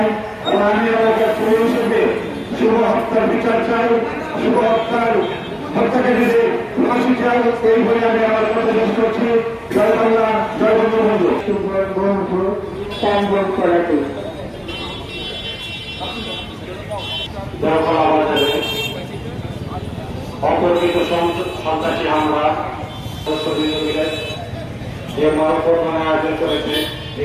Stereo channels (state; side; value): identical; both; correlation 1.00